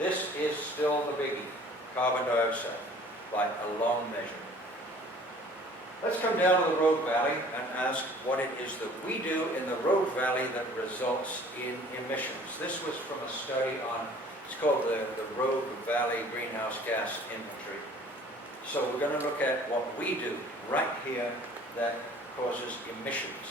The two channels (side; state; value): both; normal; correlation 0.51